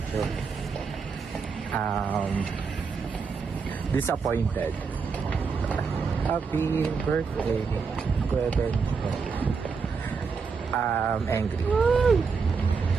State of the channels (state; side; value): quieter; left; 5.3 dB